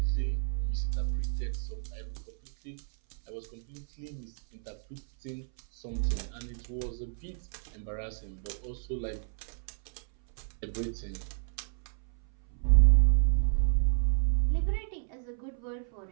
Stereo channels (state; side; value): silent; left; 57 dB below the other